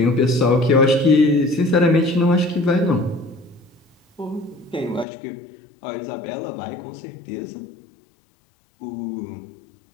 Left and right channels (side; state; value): right; drops out; at 5.1 s